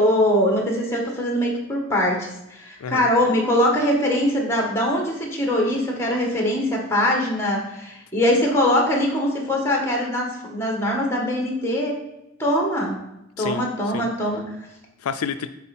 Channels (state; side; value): normal; both; correlation 0.33